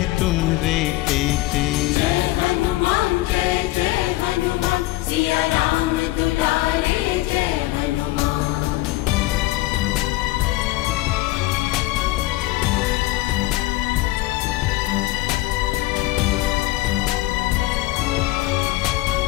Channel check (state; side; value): quieter; right; 18.1 dB